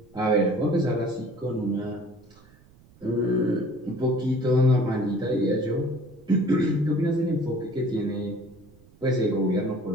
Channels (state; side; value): noise; right; rumble, 27 dB below the sound